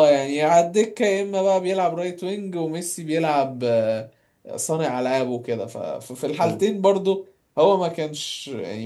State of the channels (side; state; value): both; identical; correlation 1.00